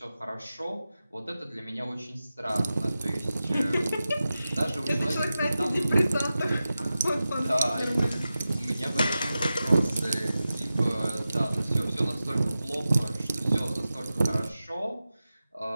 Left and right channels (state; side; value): inverted; both; correlation -0.93